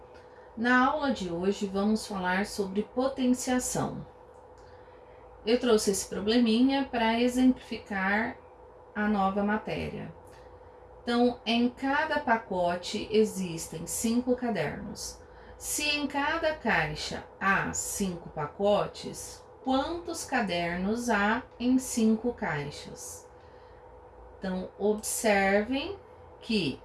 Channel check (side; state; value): both; identical; correlation 1.00